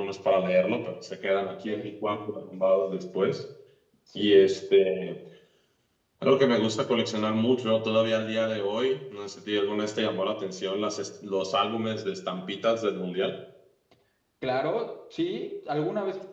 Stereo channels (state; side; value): identical; both; correlation 1.00